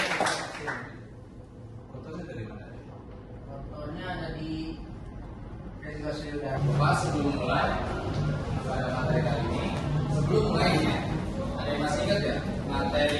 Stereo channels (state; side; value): identical; both; correlation 1.00